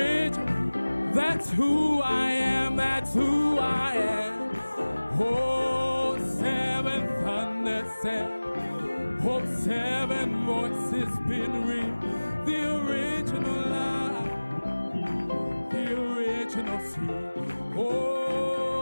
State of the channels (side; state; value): both; inverted; correlation -1.00